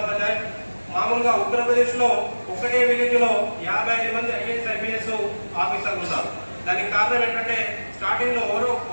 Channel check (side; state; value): both; inverted; correlation -1.00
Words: అవుతాయి. మామూలుగా ఉత్తరప్రదేశ్లో ఒకటే విలేజ్లో 55 మంది ఐఏఎస్ ఐపీఎస్ ఆఫీసర్లు ఉన్నారు. దానికి కారణం ఏంటంటే స్టార్టింగ్లో